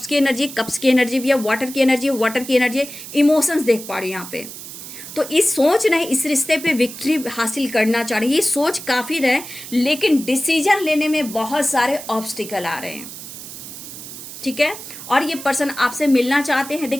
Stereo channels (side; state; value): right; noise; hiss, 12 dB below the sound